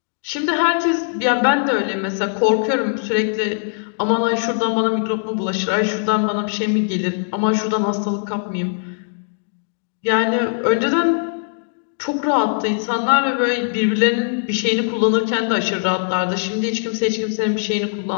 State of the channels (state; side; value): silent; right; digital silence